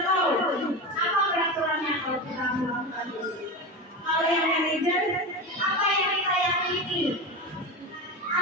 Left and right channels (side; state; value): both; normal; correlation 0.22